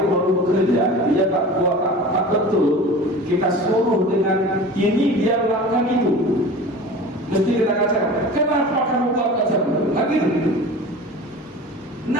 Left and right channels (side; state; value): both; normal; correlation 0.37